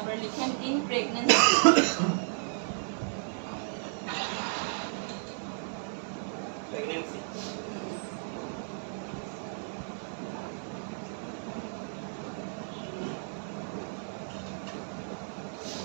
লিখেন ইন প্রেগন্যান্সি। প্রেগন্যান্সি।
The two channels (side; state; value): left; silent; 56 dB below the other